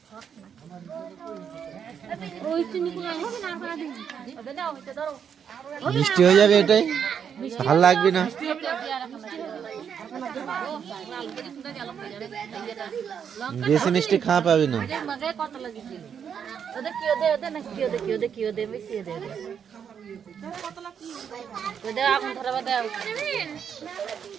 ওই চিনি গুলো হবে না আর দিন ওদের দাও এটা ধরো মিষ্টি হয়ে যাবে এটাই ভালো লাগবে না বেশি মিষ্টি খাওয়া পাবি না মগে কত লাগিছে ওদের কি ওদের না কি ওদের বেশি ওদের ওদের আগুন ধরাবা দাও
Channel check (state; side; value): quieter; left; 7.7 dB